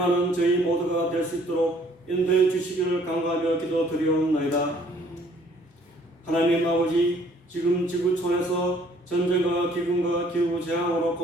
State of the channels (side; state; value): both; normal; correlation 0.60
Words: 저희 모두가 될 수 있도록 인도해 주시기를 간구하며 기도드리옵나이다. 하나님 아버지, 지금 지구촌에서 전쟁과 기근과 기후재앙으로